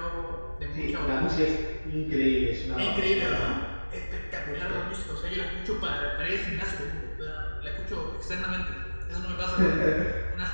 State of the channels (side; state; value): both; inverted; correlation -1.00